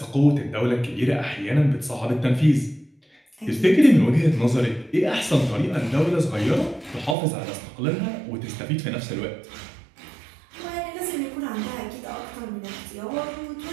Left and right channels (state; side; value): drops out; left; at 7.2 s